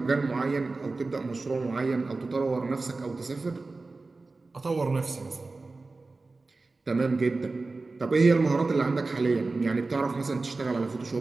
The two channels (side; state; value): left; quieter; 3.6 dB